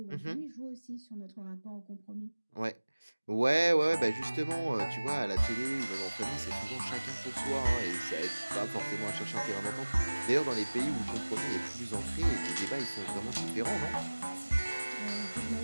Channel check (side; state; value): both; inverted; correlation -1.00